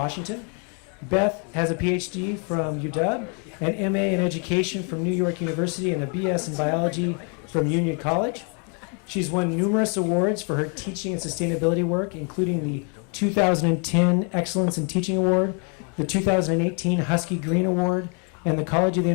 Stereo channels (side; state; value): right; quieter; 37.8 dB